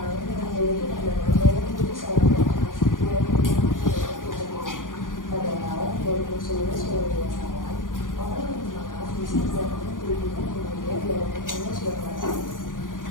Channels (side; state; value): right; late; 0.89 ms